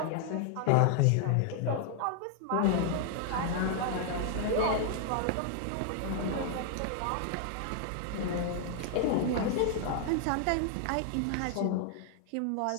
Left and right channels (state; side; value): different; both; correlation 0.00